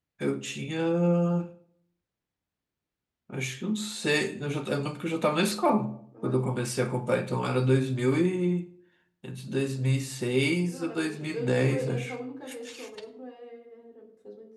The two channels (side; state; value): both; identical; correlation 1.00